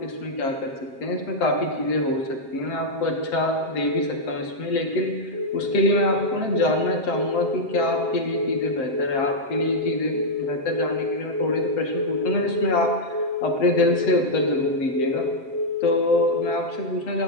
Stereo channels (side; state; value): right; late; 7.6 ms